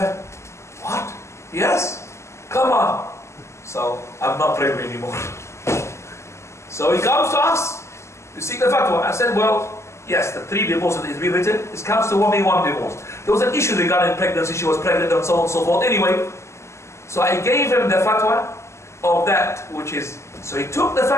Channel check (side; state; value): right; late; 0.13 ms